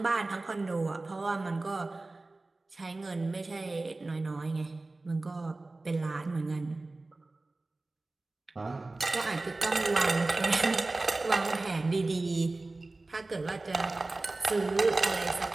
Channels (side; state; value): left; quieter; 3.2 dB